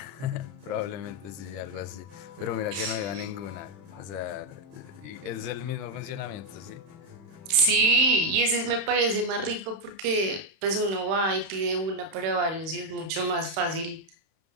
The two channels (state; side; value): late; left; 31 ms